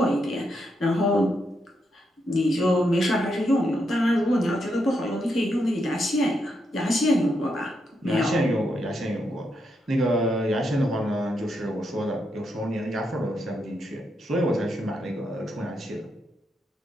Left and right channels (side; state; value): both; normal; correlation 0.81